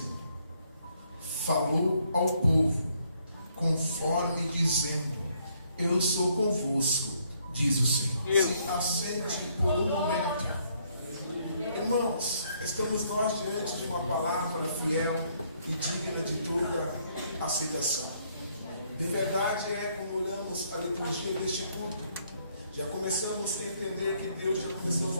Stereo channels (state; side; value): inverted; both; correlation -0.69